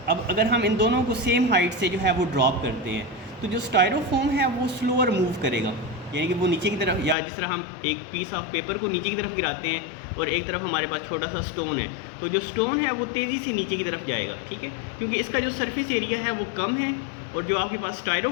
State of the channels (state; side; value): drops out; right; at 7.2 s